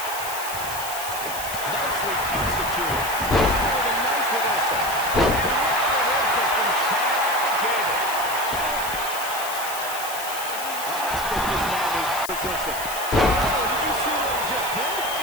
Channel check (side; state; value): left; noise; hiss, 8 dB below the sound